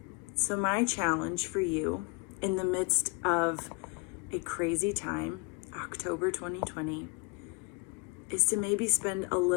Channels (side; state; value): right; quieter; 28.1 dB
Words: So my challenge for you in the midst of a crazy time, October 2020, is to maybe spend a